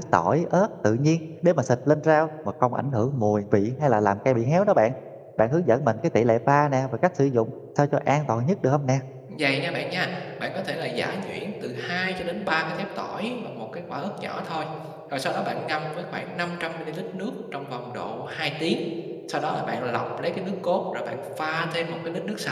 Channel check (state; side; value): identical; both; correlation 1.00